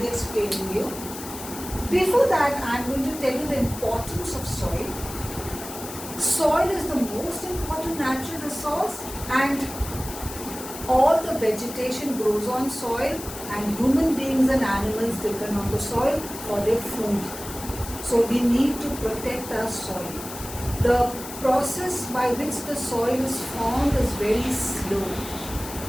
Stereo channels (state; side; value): noise; left; hiss, 11 dB below the sound